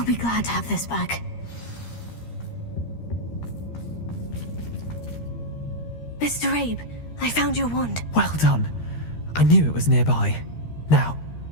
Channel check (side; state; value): right; late; 13 ms